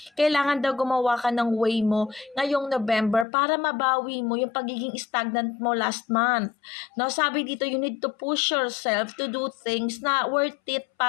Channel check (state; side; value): drops out; right; at 3.2 s